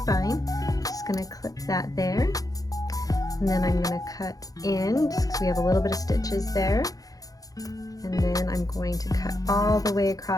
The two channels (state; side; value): late; right; 0.17 ms